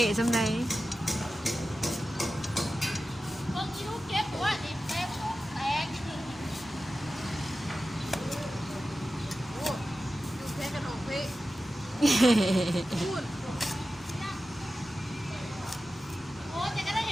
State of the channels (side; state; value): both; normal; correlation 0.94